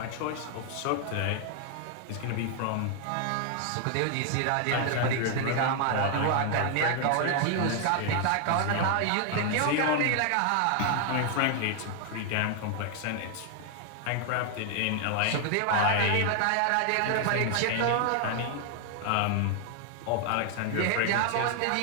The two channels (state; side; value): different; both; correlation 0.00